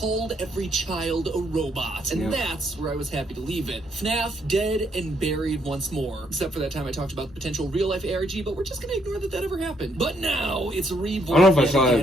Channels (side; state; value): both; normal; correlation 0.72